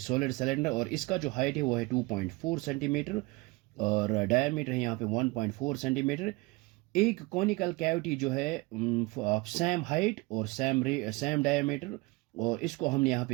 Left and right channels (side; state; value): left; quieter; 23.6 dB